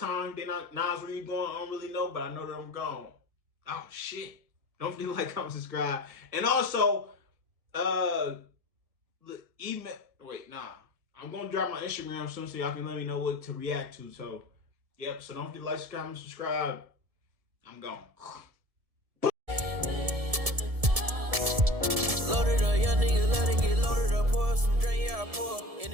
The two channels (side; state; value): left; late; 1.7 ms